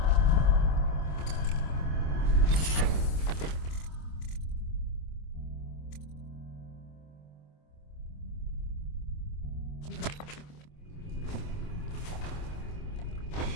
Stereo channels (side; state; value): right; late; 26 ms